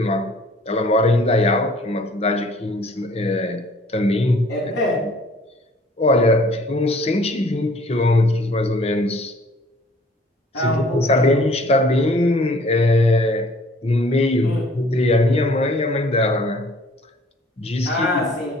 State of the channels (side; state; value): both; normal; correlation 0.55